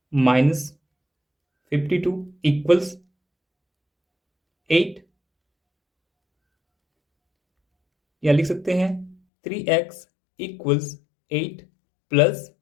माइनस 52 इक्वल्स 8, या लिख सकते हैं 3x इक्वल्स 8 प्लस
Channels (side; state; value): right; drops out; at 9.2 s